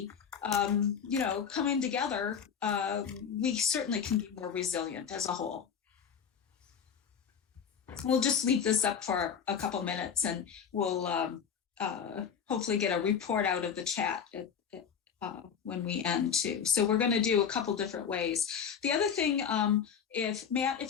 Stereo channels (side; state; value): right; quieter; 7.3 dB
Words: Coming together, we certainly can be more resilient as a whole. We'll just leave this up for a couple minutes, and we'll hopefully get a report out of the chat when we end too. So we're going to do a couple different ways. The other thing,